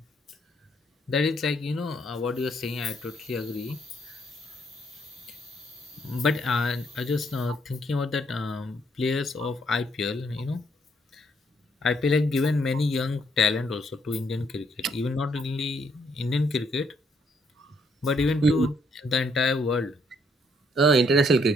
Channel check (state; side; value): normal; both; correlation 0.70